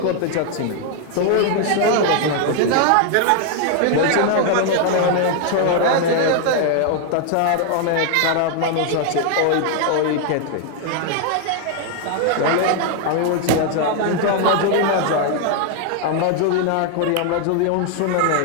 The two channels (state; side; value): different; both; correlation 0.00